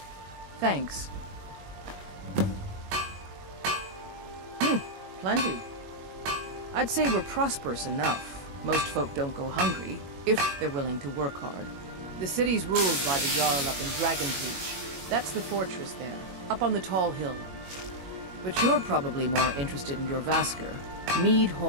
Thanks. Plenty. I'd say we're prosperous enough. Most folk don't go hungry, if they're willing to work hard. The city's ruled by the Jarl up in Dragonreach. That's the fortress there, up on the tall hill. But you're probably more interested in your Vasker, Mead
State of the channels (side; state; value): left; late; 21 ms